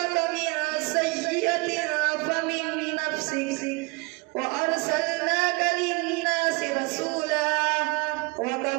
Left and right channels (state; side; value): quieter; left; 26.5 dB